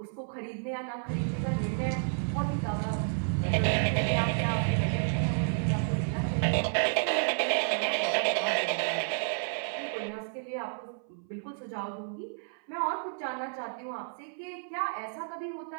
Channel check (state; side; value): silent; left; 57 dB below the other